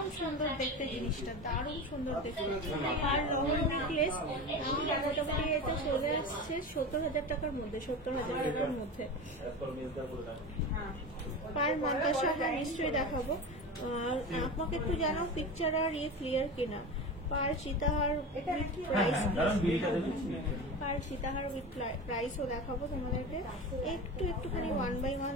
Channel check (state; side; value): normal; both; correlation 0.27